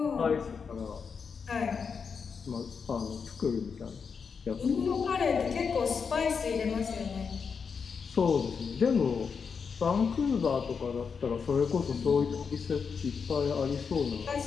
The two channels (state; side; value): quieter; right; 5.9 dB